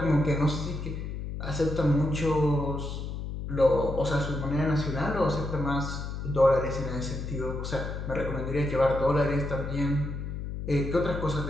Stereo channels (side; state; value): left; noise; hum, 6 dB below the sound